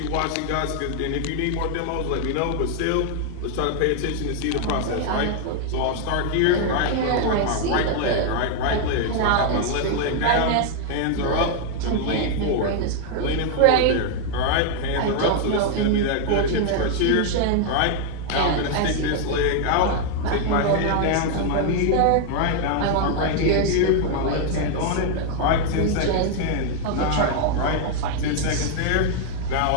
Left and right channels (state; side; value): different; both; correlation 0.00